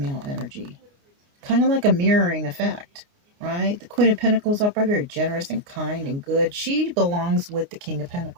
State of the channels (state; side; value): late; left; 29 ms